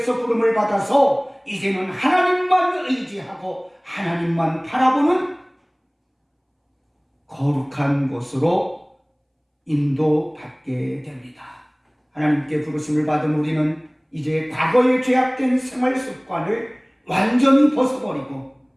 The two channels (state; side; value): identical; both; correlation 1.00